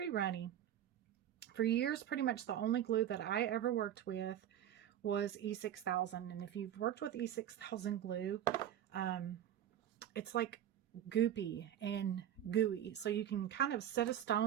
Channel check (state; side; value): quieter; left; 10.8 dB